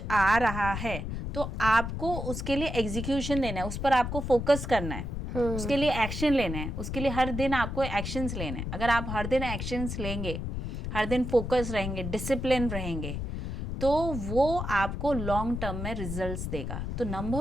आ रहा है तो आपको उसके लिए एग्जीक्यूशन देना है, उस पर आपको फोकस करना है, उसके लिए एक्शन लेना है, उसके लिए हर दिन आपको एक्शंस लेने हैं। अगर आप हर दिन एक्शंस लेंगे, हर दिन फोकस रहेंगे, डिसिप्लिन रहेंगे, तो वो आपको लॉन्ग टर्म में रिजल्ट्स देगा। तो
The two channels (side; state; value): left; noise; rumble, 4 dB below the sound